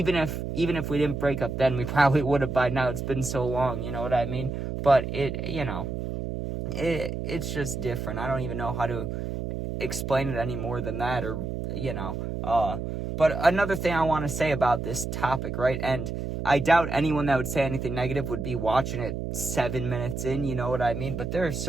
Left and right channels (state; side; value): noise; right; hum, 4 dB below the sound